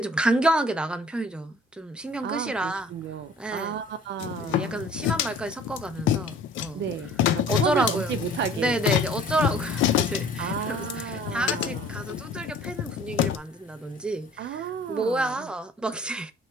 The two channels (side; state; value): both; normal; correlation 0.50